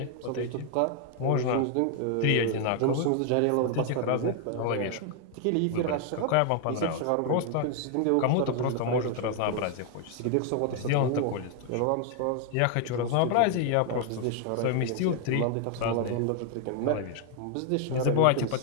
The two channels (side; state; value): both; different; correlation 0.00